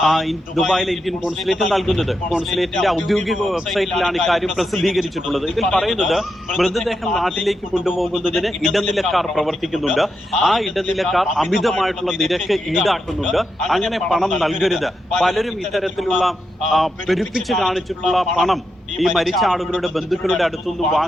ദുബായിലെ ഇന്ത്യൻ കോൺസുലേറ്റ് നൽകുന്നത്. കോൺസുലേറ്റിന്റെ ഔദ്യോഗിക വെബ്സൈറ്റിലാണ് ഇക്കാര്യം പ്രസിദ്ധീകരിച്ചിട്ടുള്ളത്. ഇതിൽ പറയുന്നത് മൃതദേഹം നാട്ടിലേക്ക് കൊണ്ടുപോകുന്നതിന് ഇടനിലക്കാർ പ്രവർത്തിക്കുന്നുണ്ട്. ആ ഇടനിലക്കാർ അമിതമായിട്ടുള്ള നിരക്ക് ഈടാക്കുന്നുണ്ട്. അങ്ങനെ പണം നൽകരുത്. പലരും ഇത്തരത്തിലുള്ള പെരുപ്പിച്ച് കാണിച്ചിട്ടുള്ള പണം ഈ മരിച്ച ആളുകളുടെ ബന്ധുക്കളുടെ അടുത്തുനിന്ന്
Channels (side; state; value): both; normal; correlation 0.85